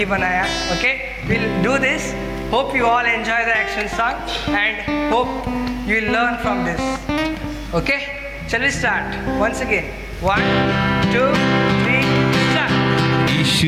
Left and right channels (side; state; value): both; identical; correlation 1.00